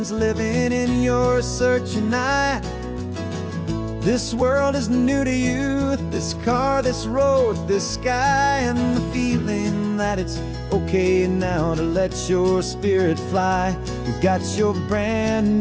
living in your searching eye. This world is new to you, this car, this road, this sky, and the feeling that it's okay now to let your spirit fly. You've got your brand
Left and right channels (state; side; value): identical; both; correlation 1.00